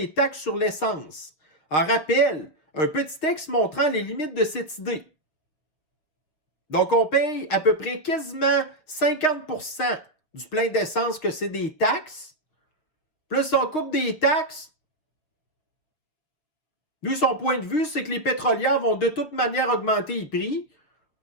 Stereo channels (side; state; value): right; late; 6.8 ms